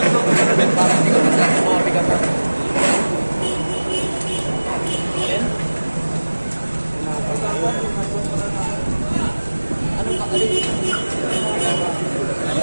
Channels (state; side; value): inverted; both; correlation -1.00